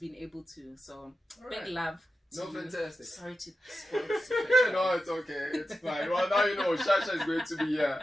able to. So big love. No, fantastic. Sorry to spoil the secret. No, it's okay. It's fine. Well, now you know Shasha is going to be here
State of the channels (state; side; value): normal; both; correlation 0.90